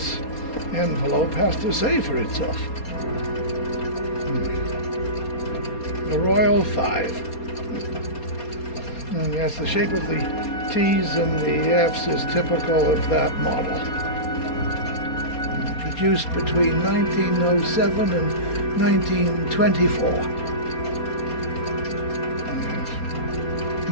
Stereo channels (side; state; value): right; late; 4.3 ms